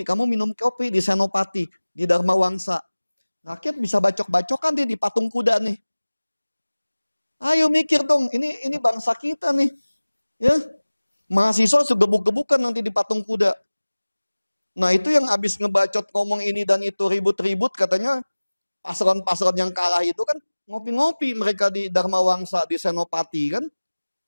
kamu minum kopi di Senopati, di Dharma Wangsa. Rakyat bisa bacok-bacokan nih di patung kuda nih. Ayo mikir dong, ini bangsa kita nih. Ya, mahasiswa segebuk-gebukan nanti di patung kuda. Nah itu yang habis ngebacot ngomong ini dan itu ribut-ribut katanya paslon-paslon yang kalah itu kan ngopi-ngopi mereka di Dharma Wangsa, di Senopati kan.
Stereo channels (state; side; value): inverted; both; correlation -1.00